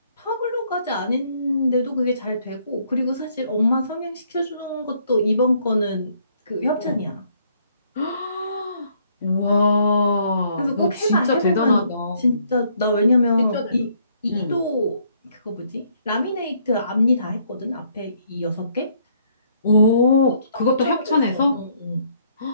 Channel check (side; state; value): both; inverted; correlation -0.67